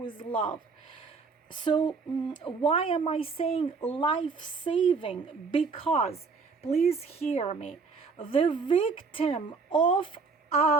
love. So why am I saying life-saving? Because, please hear me, the victim of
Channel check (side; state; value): left; quieter; 4.7 dB